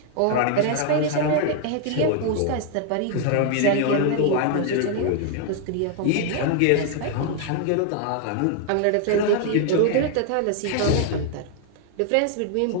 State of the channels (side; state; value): both; different; correlation 0.00